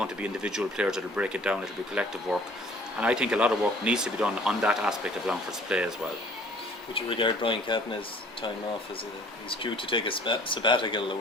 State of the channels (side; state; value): both; normal; correlation 0.53